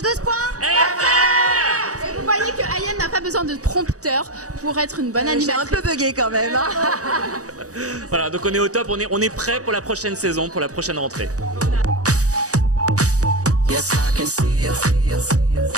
Et vous voyez que Ayem n'a pas besoin de prompteur pour être une bonne J'ai un animatrice. peu bugué quand même. Hein. Voilà, donc on est au top, on est prêt pour la prochaine saison, pour la prochaine rentrée.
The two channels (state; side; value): late; left; 0.66 ms